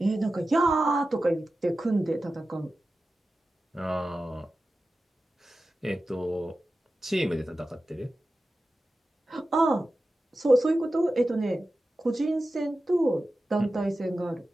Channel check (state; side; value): normal; both; correlation 0.94